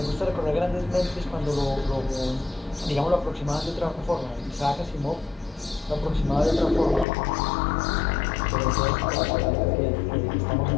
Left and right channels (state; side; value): drops out; right; at 7.1 s